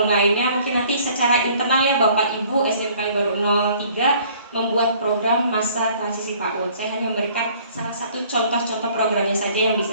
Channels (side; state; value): both; inverted; correlation -0.56